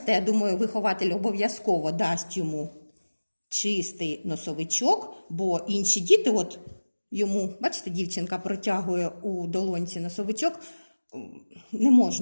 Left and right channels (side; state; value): both; inverted; correlation -1.00